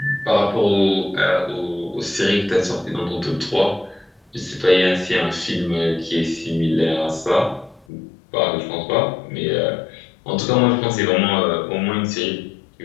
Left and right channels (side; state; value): right; drops out; at 7.9 s